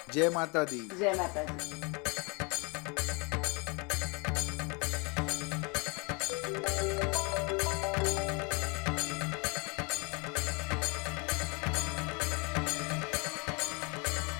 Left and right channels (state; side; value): quieter; right; 31.2 dB